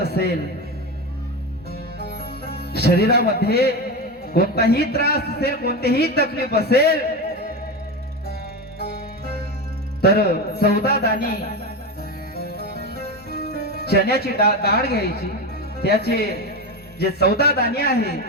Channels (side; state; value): both; normal; correlation 0.18